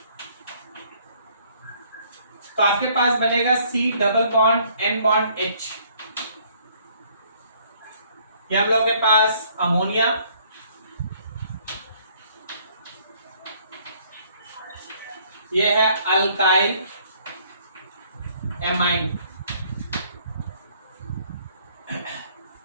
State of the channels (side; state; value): both; inverted; correlation -0.63